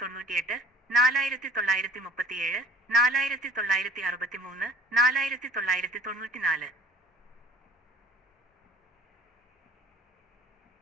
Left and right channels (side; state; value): both; normal; correlation 0.49